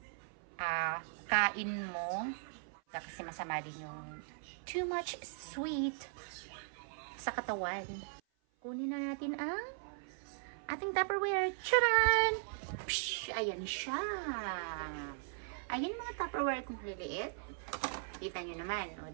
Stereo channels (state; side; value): silent; left; 52 dB below the other